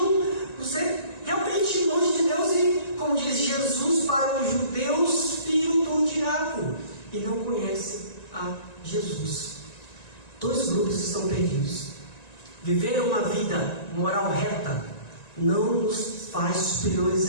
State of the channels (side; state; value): right; late; 1.9 ms